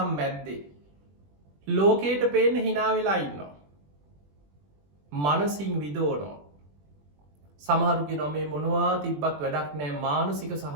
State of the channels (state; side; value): late; left; 21 ms